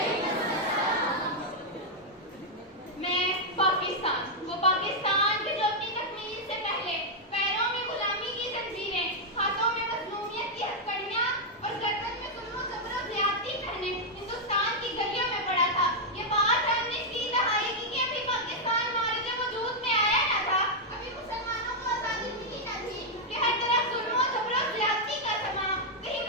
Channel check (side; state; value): both; normal; correlation -0.03